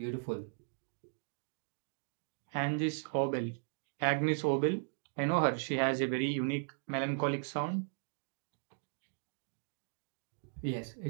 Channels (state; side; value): silent; left; digital silence